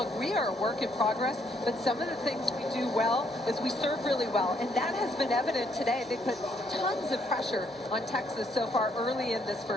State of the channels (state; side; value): normal; both; correlation 0.71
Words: we are a work in progress, but some of the things we do well is we serve really well. And that has been evident today. They put tons of pressure on Texas so far early in this